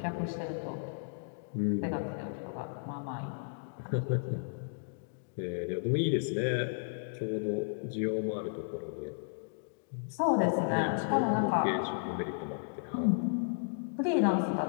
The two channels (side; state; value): right; silent; digital silence